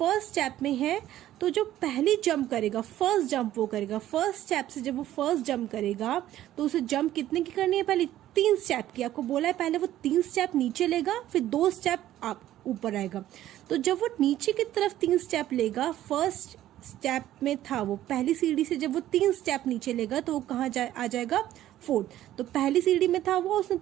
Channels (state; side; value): quieter; left; 13.3 dB